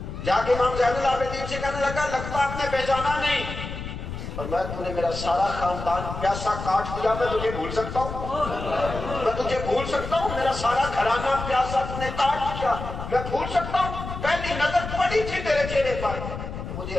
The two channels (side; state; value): left; noise; rumble, 8 dB below the sound